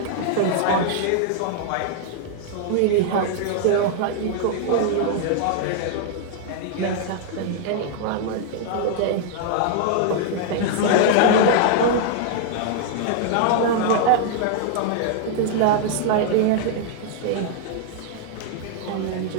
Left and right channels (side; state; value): both; different; correlation -0.01